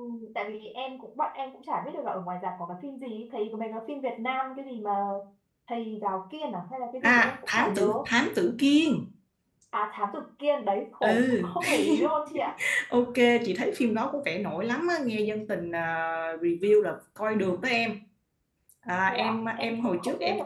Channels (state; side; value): identical; both; correlation 1.00